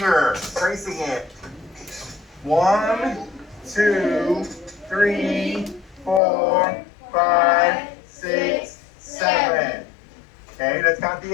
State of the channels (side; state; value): right; drops out; at 6.2 s